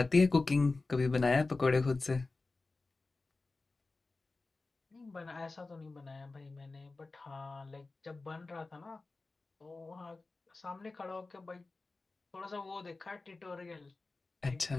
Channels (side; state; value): right; quieter; 3.5 dB